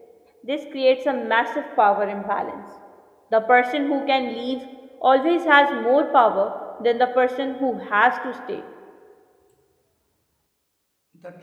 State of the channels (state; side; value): identical; both; correlation 1.00